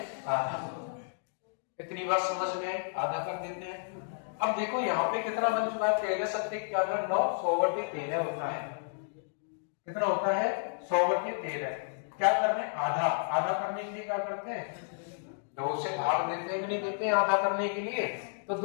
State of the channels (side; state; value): right; silent; digital silence